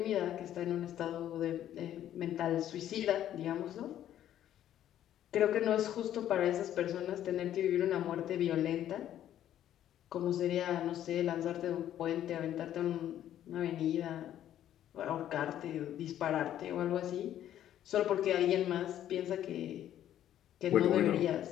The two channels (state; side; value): quieter; right; 11.5 dB